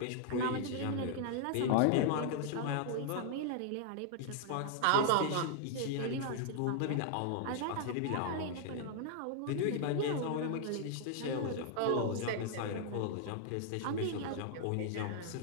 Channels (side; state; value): both; different; correlation 0.00